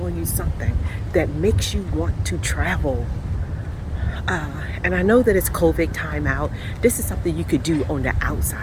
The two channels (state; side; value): identical; both; correlation 1.00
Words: you something that makes you want to travel. And I know that it's COVID time out. This is something you could do on the